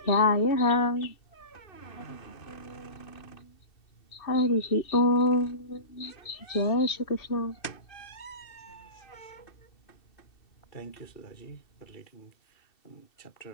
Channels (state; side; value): late; right; 2.7 ms